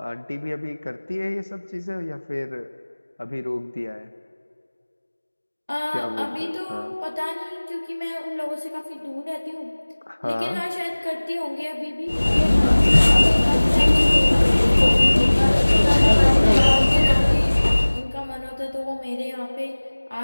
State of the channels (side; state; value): both; inverted; correlation -1.00